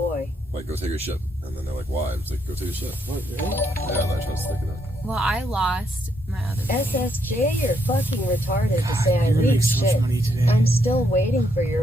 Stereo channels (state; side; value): normal; both; correlation 0.75